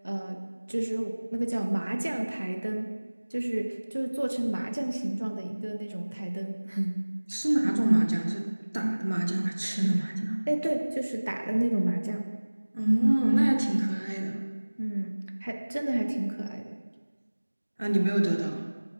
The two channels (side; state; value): both; inverted; correlation -1.00